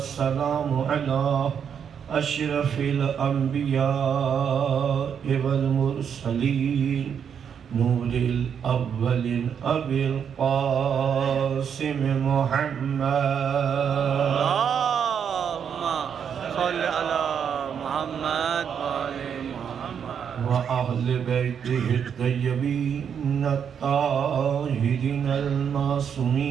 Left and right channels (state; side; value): quieter; left; 7.7 dB